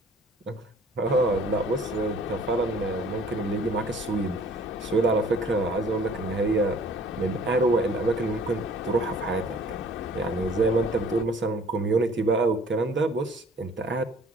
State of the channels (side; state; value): both; normal; correlation 0.53